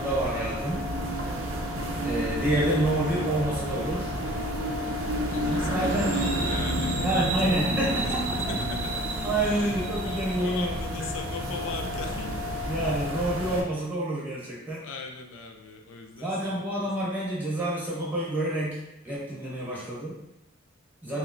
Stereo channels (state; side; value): normal; both; correlation 0.48